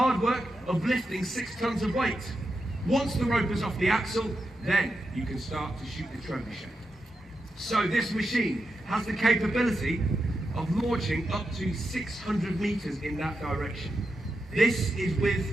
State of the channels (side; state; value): both; normal; correlation 0.87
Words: work of lifting 6 tons of weight. Once the rope is off the axle, then you can start to shoot the trebuchet. So this machine has the capability of launching up to 600 meters in that direction. This is with